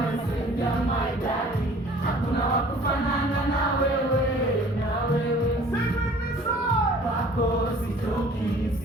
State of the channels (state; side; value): normal; both; correlation 0.51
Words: maidadi, hakuna wa kufanana na wewe, wako sitoki